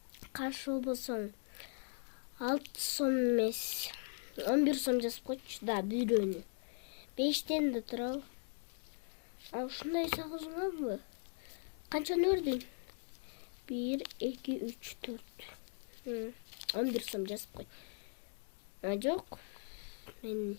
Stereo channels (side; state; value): right; silent; 52 dB below the other